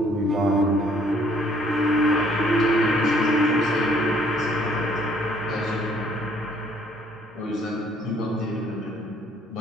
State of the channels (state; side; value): normal; both; correlation 0.62